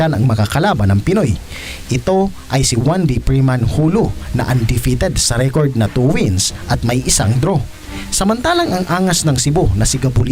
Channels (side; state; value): both; identical; correlation 1.00